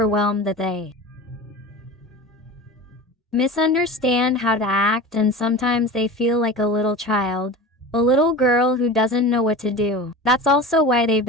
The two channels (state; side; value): normal; both; correlation 0.32